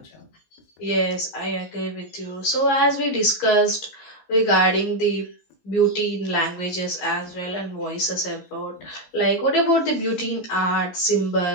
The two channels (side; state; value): right; late; 17 ms